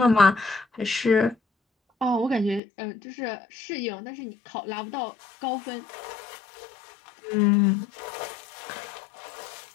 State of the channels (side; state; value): right; drops out; at 2.6 s